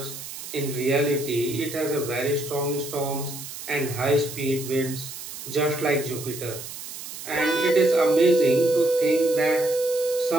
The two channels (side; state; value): right; noise; hiss, 11 dB below the sound